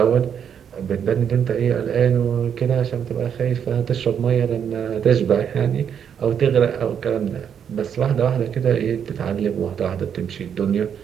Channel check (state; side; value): quieter; left; 8.1 dB